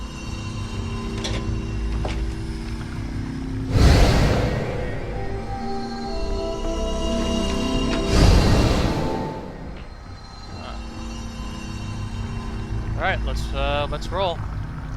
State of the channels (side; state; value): both; identical; correlation 1.00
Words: Alright, let's roll.